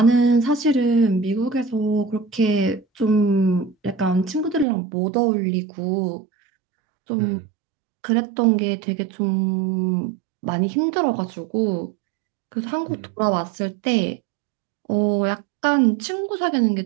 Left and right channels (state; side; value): drops out; left; at 4.7 s